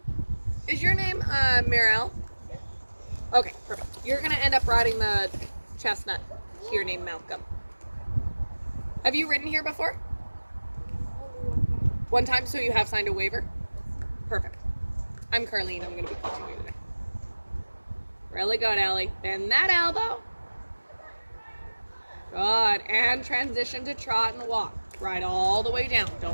Is your name Mirel? Okay, perfect. You're going to end up riding the chestnut here named Malcolm. Have you ridden here before? One time, so you have signed a waiver? Perfect. I'm Carlene. I'm going to be coaching you today. Really good, Ellie. Bend that elbow. Good. And transition to trot and walk. Ride all the way down.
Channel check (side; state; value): both; inverted; correlation -1.00